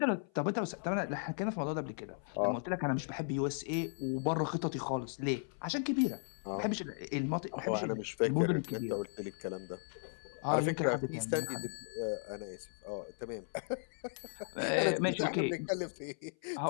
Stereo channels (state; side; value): silent; right; 54 dB below the other